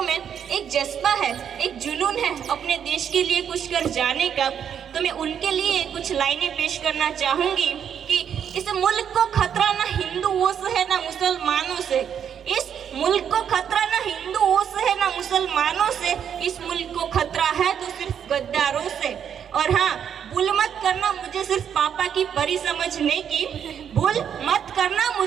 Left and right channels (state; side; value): quieter; left; 8.4 dB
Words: में एक जज्बा है, एक जुनून है अपने देश के लिए कुछ कर जाने का। तो मैं उनके लिए कुछ लाइनें पेश करना चाहूंगी कि इस मुल्क को खतरा ना हिंदुओं से है ना मुसलमानों से। इस मुल्क को खतरा ना हिंदुओं से है ना मुसलमानों से। इस मुल्क को खतरा है तो सिर्फ गद्दारों से। और हाँ, भूल मत करना मुझे सिर्फ पापा की परी समझने की, भूल मत करना